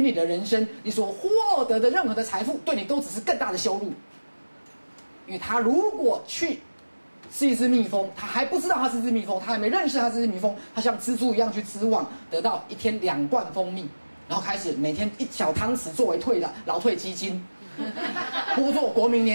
的人生，你所获得的任何的财富，对你都只是更大的羞辱。因为他如果去是一只蜜蜂，他还不知道他是一只蜜蜂，他还没认识他是一只蜜蜂，他像蜘蛛一样去织网，得到一天2罐蜂蜜，然后开始每天1小汤匙作为劳退基金，拨作国民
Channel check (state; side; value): inverted; both; correlation -1.00